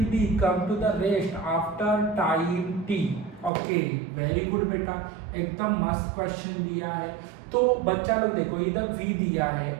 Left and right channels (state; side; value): drops out; left; at 3.5 s